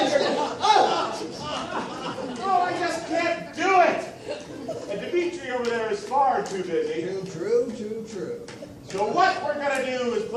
your it. ground. Oh! Oh, I just can't do it! And Dimitri over there is far too busy. Too true, too true. So what we're going to do is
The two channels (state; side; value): identical; both; correlation 1.00